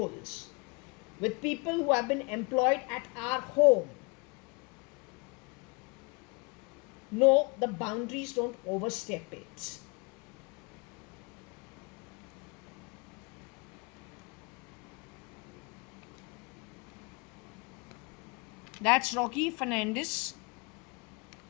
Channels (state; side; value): quieter; right; 29.6 dB